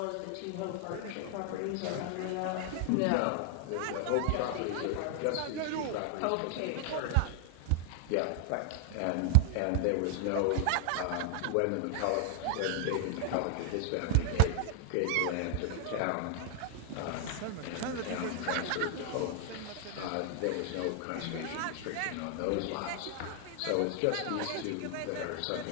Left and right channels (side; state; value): both; different; correlation 0.00